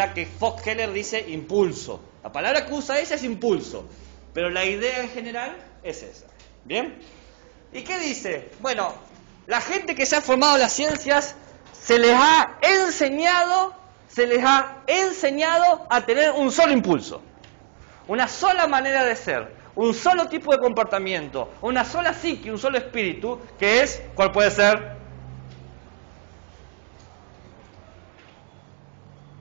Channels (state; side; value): silent; left; 61 dB below the other